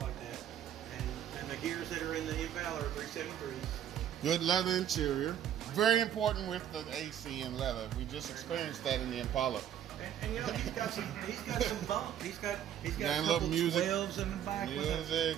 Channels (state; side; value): quieter; left; 10.3 dB